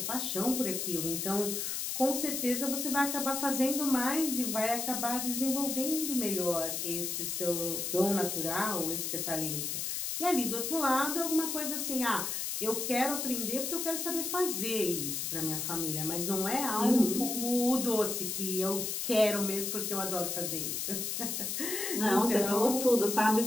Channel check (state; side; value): noise; left; hiss, 2 dB below the sound